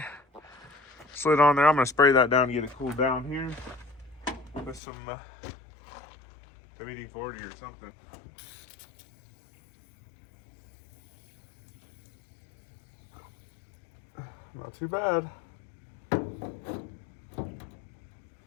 slid on there. I'm gonna spray that down and get it cooled down here with some WD-40 or something. Not too bad.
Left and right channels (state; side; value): drops out; right; at 4.8 s